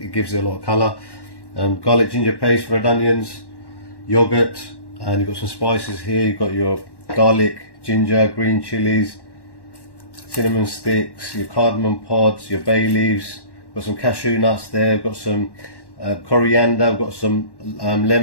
gives it a lot of colour. Garlic ginger paste, red onions, yogurt, and you've got some spices here. You've got your garlic, ginger, green chilies, cinnamon sticks, your cardamom pods, your bay leaves, got some cashew nuts there, got some coriander, we've got some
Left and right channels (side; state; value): right; late; 1.1 ms